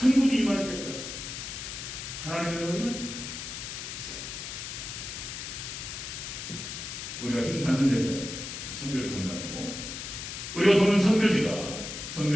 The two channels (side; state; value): left; noise; hiss, 7 dB below the sound